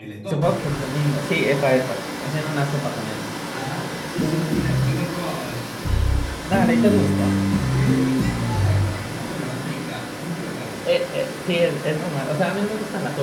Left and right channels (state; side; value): identical; both; correlation 1.00